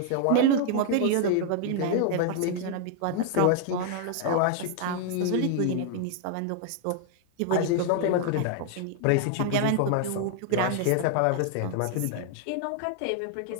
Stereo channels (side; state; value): both; different; correlation 0.00